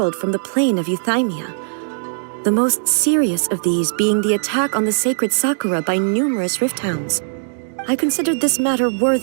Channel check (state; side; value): silent; left; digital silence